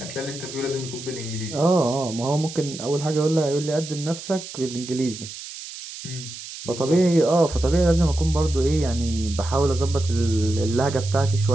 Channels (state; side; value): noise; right; hiss, 12 dB below the sound